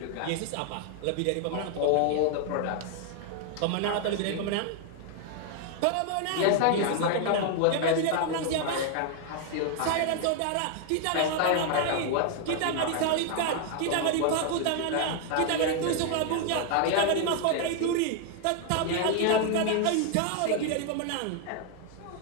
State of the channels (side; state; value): both; different; correlation 0.00